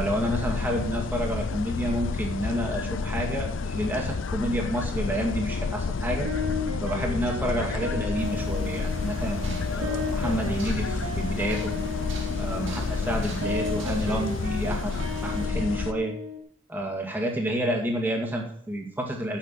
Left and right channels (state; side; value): normal; both; correlation 0.64